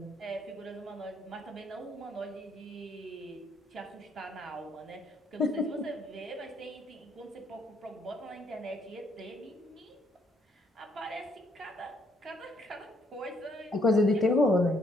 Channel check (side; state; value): both; normal; correlation 0.70